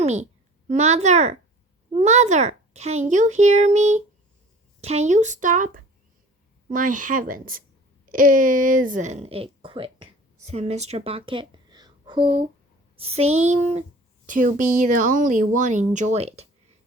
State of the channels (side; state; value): both; normal; correlation 0.45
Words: me? Mother, can you hear me? Can you stop?" "My heavens, isn't it quick?" said Mr. Bucket, who seemed to be the only one enjoying it.